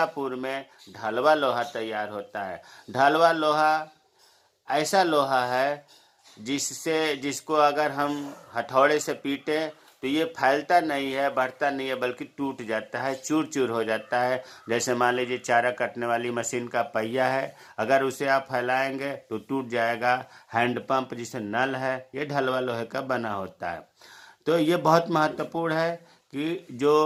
में ढलवा लोहा तैयार होता है। ढलवा लोहा ऐसा लोहा है जिसको अगर हम हथौड़े से पीटे तो ये फैलता नहीं है, बढ़ता नहीं है, बल्कि टूट जाता है, चूर चूर हो जाता है। जैसे मान लीजिए चारा काटने वाली मशीन का पहिया है, अगर उसे आप फैलाएंगे तो टूट जाएगा। हैंडपंप जिसे नल है, ये ढलवा लोहे का बना होता है। तो ये बहुत महत्वपूर्ण है कि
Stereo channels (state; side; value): identical; both; correlation 1.00